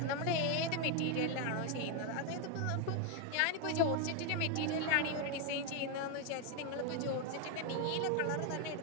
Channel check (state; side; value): different; both; correlation 0.01